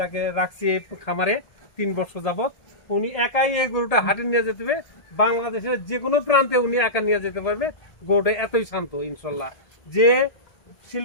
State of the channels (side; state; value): right; late; 1.8 ms